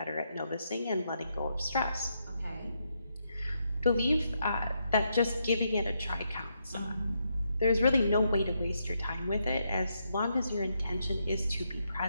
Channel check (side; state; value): both; inverted; correlation -0.79